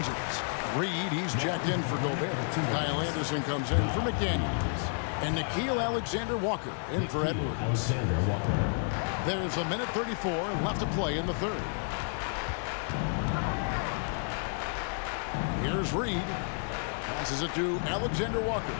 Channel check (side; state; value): right; silent; 56 dB below the other